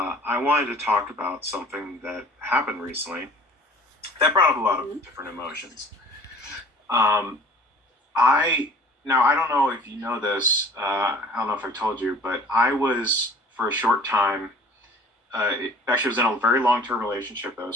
wanted to talk about something that happened recently that brought up a lot of Mhm. different emotions. Um, I Now I don't know if you know this. I don't know if I told you, but I was for a short time. Actually, was in a very long-term relationship that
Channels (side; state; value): both; normal; correlation 0.48